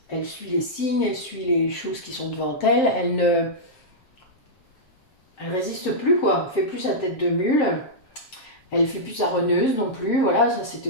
elle suit les signes, elle suit les choses qui sont devant elle, elle résiste plus, quoi, elle fait plus sa tête de mule, elle fait plus sa reneuse non plus, voilà, ça c'était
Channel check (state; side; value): late; right; 7.6 ms